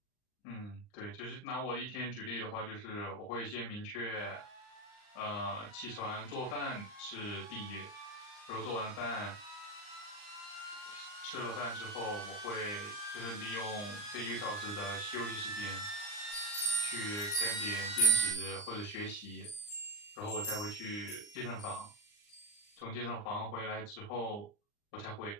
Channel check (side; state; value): right; late; 39 ms